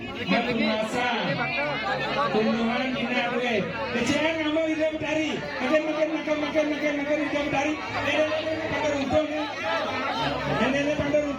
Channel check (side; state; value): both; identical; correlation 1.00